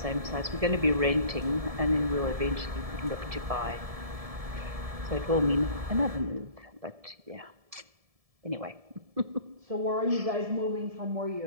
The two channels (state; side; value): late; left; 1.7 ms